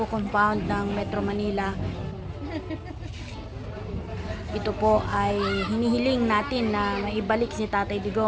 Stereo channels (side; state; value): both; identical; correlation 1.00